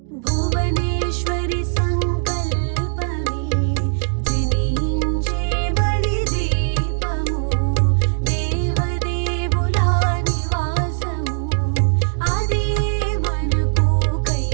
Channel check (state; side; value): silent; left; digital silence